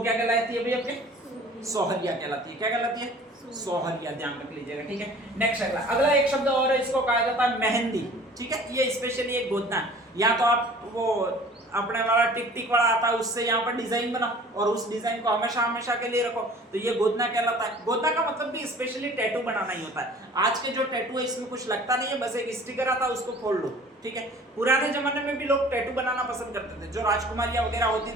कहलाती है भाई आपके, सोहरिया कहलाती है। क्या कहलाती है, सोहरिया, ध्यान रख लीजिएगा। ठीक है, नेक्स्ट अगला एक शब्द और है, इसको कहा जाता है मेहंदी। ठीक है, ये स्पेशली एक गोदना, या तो आप वो अपने वाला टिक टिक वाला आता है उससे यहाँ पर डिजाइन बनाओ और उस डिजाइन को हमेशा हमेशा के लिए रखो, तो ये गोदना कहलाता है। गोदना का मतलब भी स्पेशली टैटू बनाना ही होता है। आज के जो टैटू है इसमें कुछ लगता नहीं है, बस एक स्टिकर आता है उसको खोल लो। ठीक है, पुराने जमाने में भी लोग टैटू बनाना पसंद करते थे, जो राजकुमारियां वगैरह होती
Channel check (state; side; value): normal; both; correlation 0.47